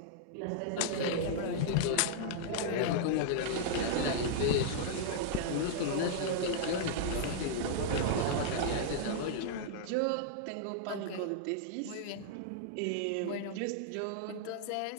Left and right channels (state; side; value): different; both; correlation -0.01